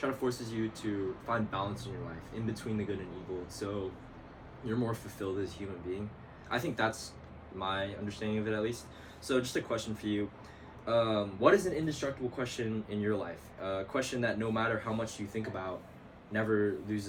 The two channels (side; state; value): both; identical; correlation 1.00